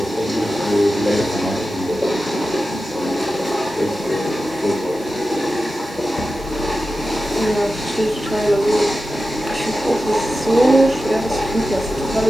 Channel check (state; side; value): noise; right; hiss, 23 dB below the sound